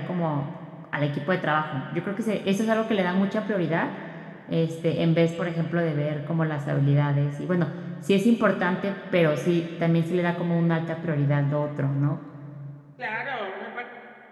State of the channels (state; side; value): identical; both; correlation 1.00